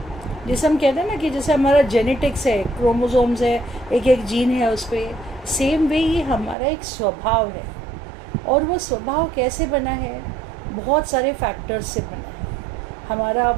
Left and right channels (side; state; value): left; drops out; at 6.6 s